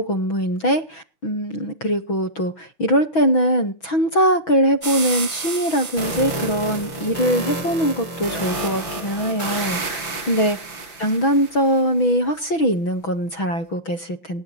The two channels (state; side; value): late; right; 6.0 ms